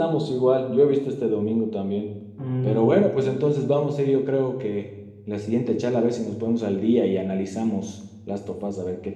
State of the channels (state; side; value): identical; both; correlation 1.00